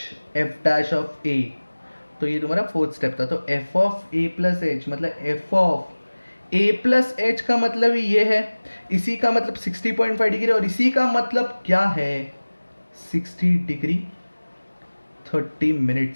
F dash of A. तो ये तुम्हारा fourth step था। तो F of A plus H मतलब F of A plus H का मतलब ये है, इसी का मतलब 60.5 डिग्री, और इसी का मतलब क्या है 60 degree 30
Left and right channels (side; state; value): both; inverted; correlation -1.00